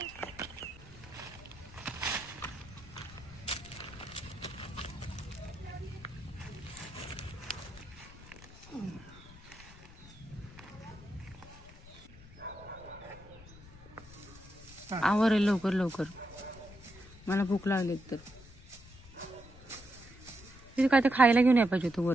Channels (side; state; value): left; noise; rumble, 19 dB below the sound